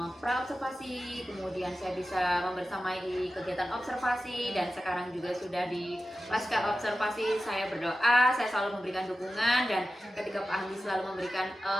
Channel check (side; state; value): both; normal; correlation 0.93